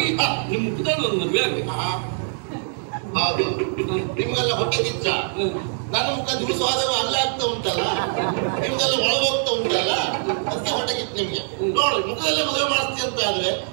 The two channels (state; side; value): silent; left; 62 dB below the other